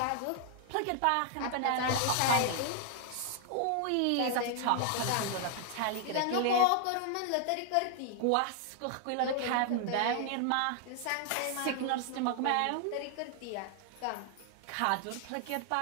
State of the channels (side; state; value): both; different; correlation 0.00